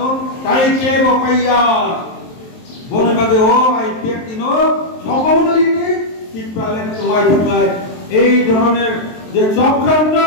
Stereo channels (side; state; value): right; late; 23 ms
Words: তাই কে বপাইয়া বনে বাদে ও আইপিএফ দিন সকলেরই ত্রিপুরালের তোমায় থাকায় এই ধরনের যে চক্রান্ত